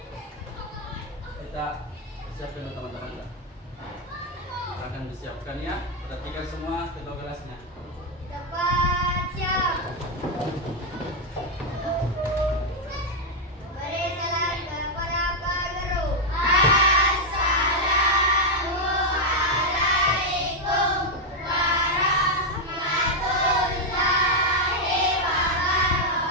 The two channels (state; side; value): normal; both; correlation 0.01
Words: Kita siapkan teman-teman. Akan disiapkan ya. Perhatikan semua ketua kelasnya. Kita baca.